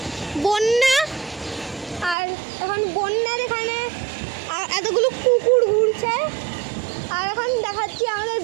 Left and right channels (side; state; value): left; drops out; at 2.1 s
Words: বন্যা। আর এখন বন্যার এখানে এতগুলো কুকুর ঘুরছে। আর এখন দেখাচ্ছি আমাদের